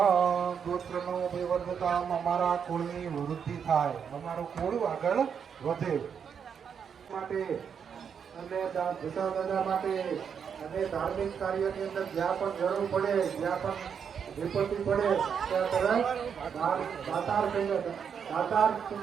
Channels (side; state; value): left; quieter; 7.2 dB